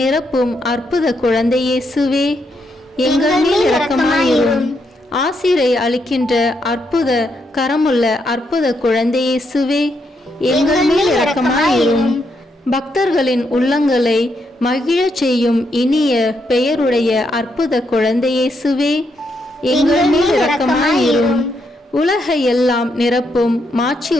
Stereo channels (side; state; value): both; normal; correlation 0.79